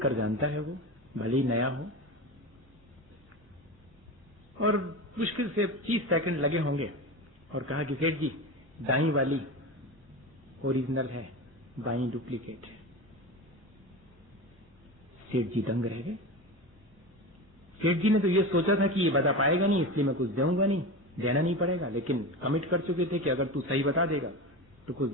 जानता है वो, भले ही नया हो। और मुश्किल से 30 सेकंड लगे होंगे और कहा कि सेठ जी, दाई वाली ओरिजिनल है, बाई डुप्लीकेट है। सेठ जी दंग रह गए। सेठ जी ने तो ये सोचा था कि ये बता पाएगा नहीं, इसलिए मैं कुछ दूंगा नहीं, देना नहीं पड़ेगा, लेकिन कमिट कर चुके थे कि अगर तू सही बता देगा तो कुछ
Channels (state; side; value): normal; both; correlation 0.26